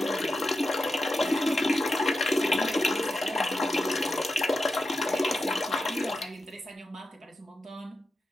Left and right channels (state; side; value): normal; both; correlation 0.90